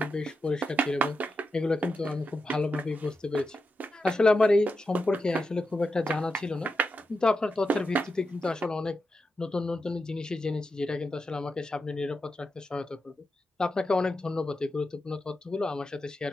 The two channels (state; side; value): normal; both; correlation 0.88